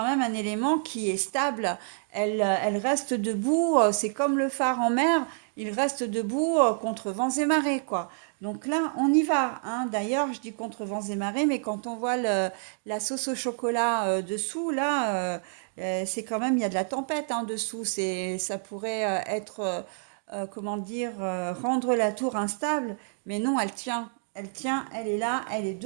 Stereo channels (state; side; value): silent; left; digital silence